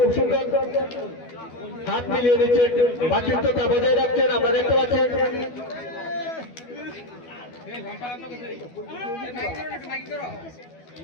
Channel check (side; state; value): right; late; 12 ms